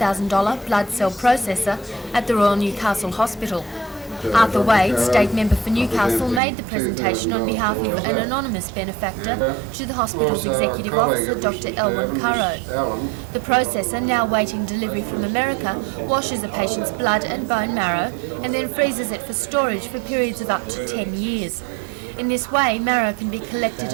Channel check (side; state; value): left; drops out; at 6.4 s